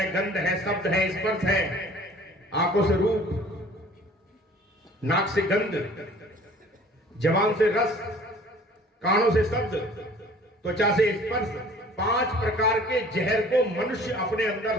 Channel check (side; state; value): both; normal; correlation 0.50